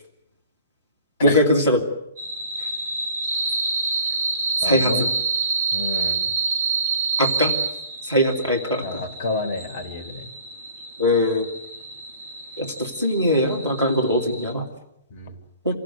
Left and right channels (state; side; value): inverted; both; correlation -0.48